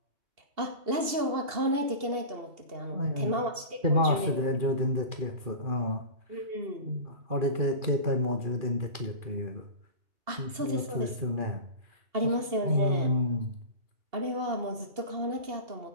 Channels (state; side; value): late; left; 2.7 ms